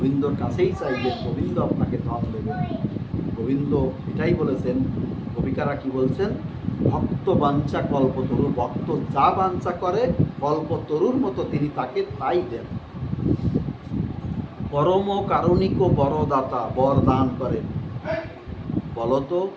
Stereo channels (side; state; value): both; identical; correlation 1.00